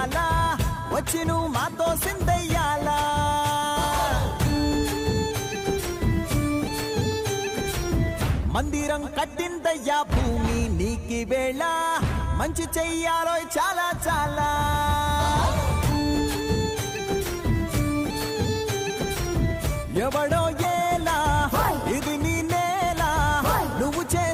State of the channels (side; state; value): both; identical; correlation 1.00